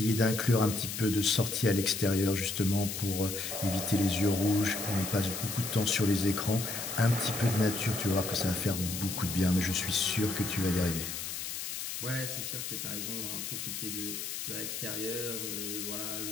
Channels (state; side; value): noise; left; hiss, 5 dB below the sound